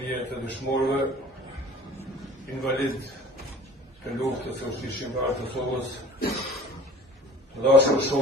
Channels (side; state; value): both; normal; correlation 0.45